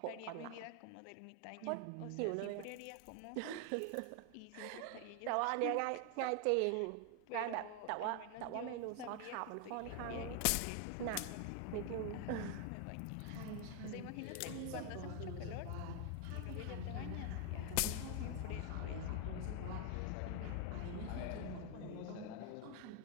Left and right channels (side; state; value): both; different; correlation 0.01